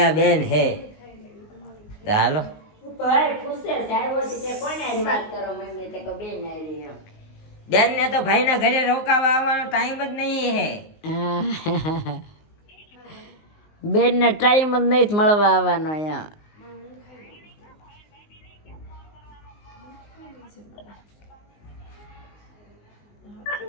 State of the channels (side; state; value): right; late; 19 ms